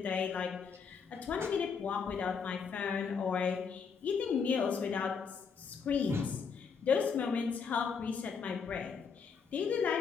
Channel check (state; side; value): quieter; right; 5.9 dB